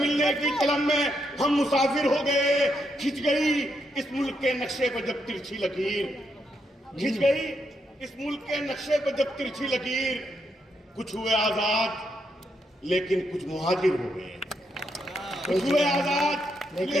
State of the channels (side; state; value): both; normal; correlation 0.80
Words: की तलब में हम मुसाफिर हो गए। खिंच गई इस मुल्क के नक्शे पर जब तिरछी लकीर, खिंच गई इस मुल्क के नक्शे पर जब तिरछी लकीर। कुछ हुए आजाद लेकिन कुछ मुहाजिर हो गए, कुछ हुए आजाद